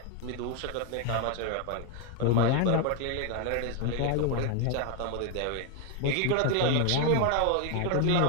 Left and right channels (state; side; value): different; both; correlation 0.01